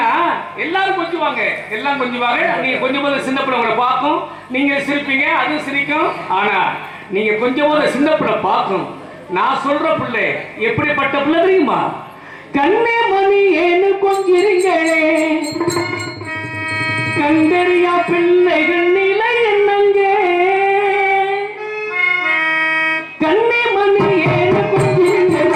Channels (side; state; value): both; identical; correlation 1.00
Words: எல்லாரும் கொஞ்சுவாங்க, எல்லாம் கொஞ்சுவாங்க. நீங்க கொஞ்சம் போது சின்ன பிள்ளை உங்களை பார்க்கும், நீங்க சிரிப்பீங்க, அது சிரிக்கும். ஆனா நீங்க கொஞ்சம் போது சின்ன பிள்ளை பார்க்கும். நான் சொல்ற பிள்ளை எப்படிப்பட்ட பிள்ளை தெரியுமா? கண்ணே மணி ஏன்னு கொஞ்சிருங்களே, கண்டறியா பிள்ளைகள் நிலை என்னங்க, கண்ணே மணி ஏன்னு